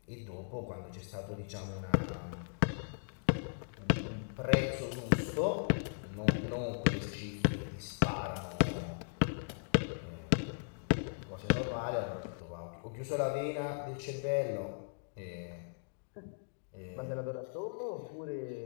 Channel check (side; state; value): right; silent; digital silence